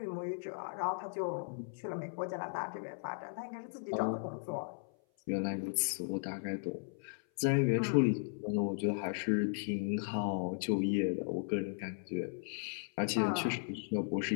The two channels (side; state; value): right; silent; 53 dB below the other